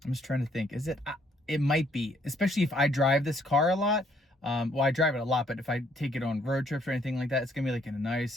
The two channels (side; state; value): both; normal; correlation 0.67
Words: I'm just trying to think. Is it? It might be, especially if I drive this car a lot. Well, I drive it a lot, but if I take it on road trips or anything like that, it's gonna be like a